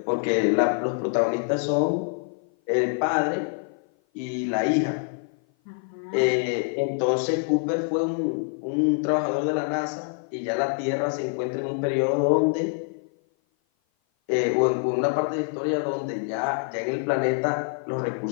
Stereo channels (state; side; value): silent; right; 56 dB below the other